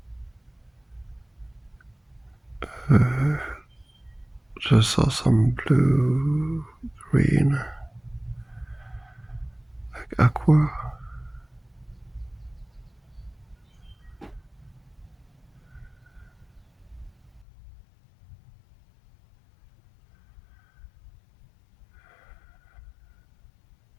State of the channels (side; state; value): right; drops out; at 17.4 s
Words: Uh, just saw some blue, green, like aqua.